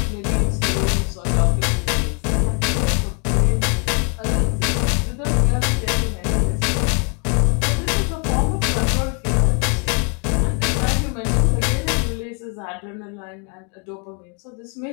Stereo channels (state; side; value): quieter; right; 37.4 dB